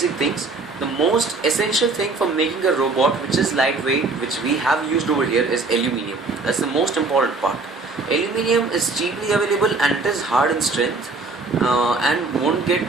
things. The most essential thing for making a robot which is lightweight, which we have used over here, is aluminium. That's the most important part. Aluminium is cheaply available and it is hard in strength and won't get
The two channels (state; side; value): quieter; left; 3.7 dB